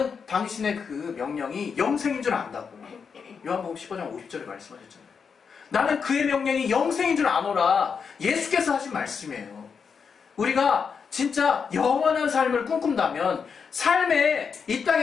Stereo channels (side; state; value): right; quieter; 6.1 dB